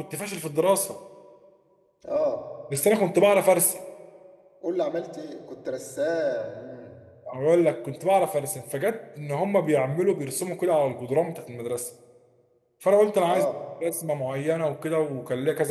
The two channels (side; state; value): both; identical; correlation 1.00